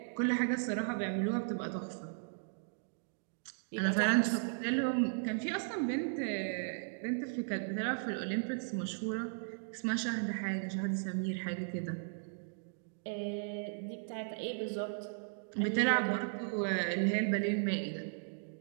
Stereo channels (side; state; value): left; silent; digital silence